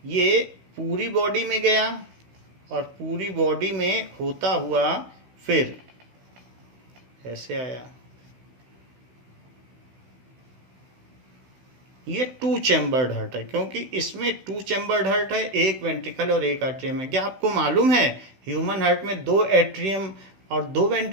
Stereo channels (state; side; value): late; left; 16 ms